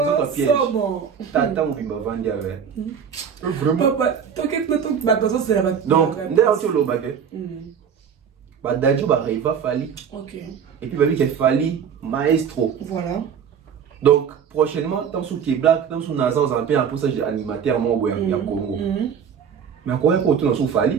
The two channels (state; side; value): quieter; left; 7.4 dB